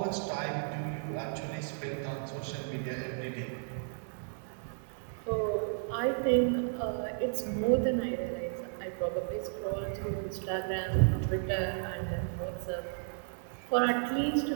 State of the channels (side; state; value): left; silent; digital silence